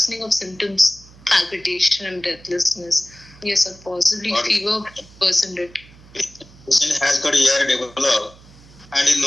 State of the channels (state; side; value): noise; right; hum, 23 dB below the sound